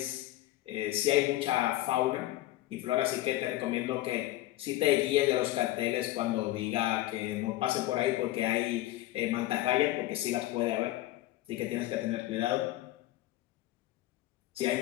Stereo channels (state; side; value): quieter; right; 15.8 dB